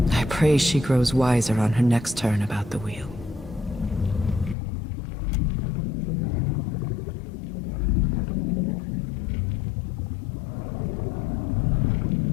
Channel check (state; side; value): drops out; right; at 4.5 s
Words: I pray she grows wiser on her next turn about the wheel.